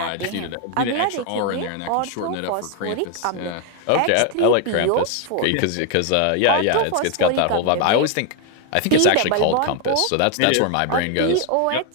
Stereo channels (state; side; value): different; both; correlation 0.01